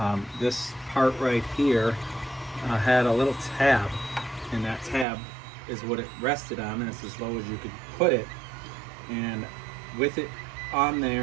This part right here had a little tab, and that tab is what it rested on, and it's as low as you could put it. And with it on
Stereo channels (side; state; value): left; drops out; at 5.1 s